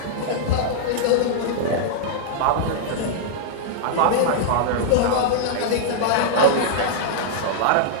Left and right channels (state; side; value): different; both; correlation -0.01